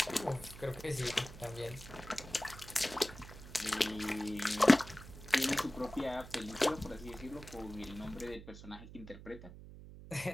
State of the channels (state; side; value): noise; right; hum, 15 dB below the sound